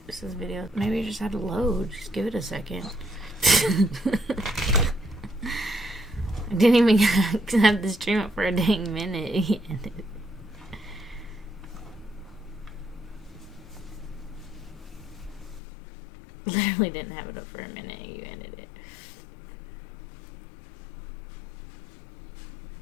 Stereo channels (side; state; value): right; drops out; at 15.6 s